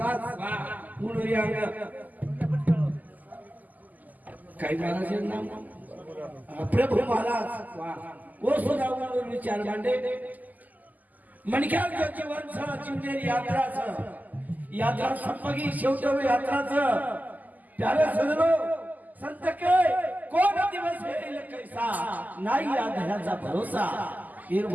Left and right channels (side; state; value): left; late; 0.081 ms